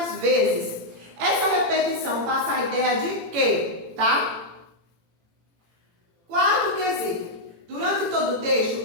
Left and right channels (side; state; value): left; late; 18 ms